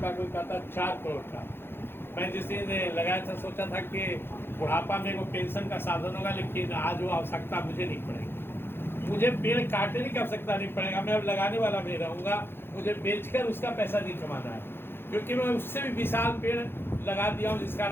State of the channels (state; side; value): late; right; 0.11 ms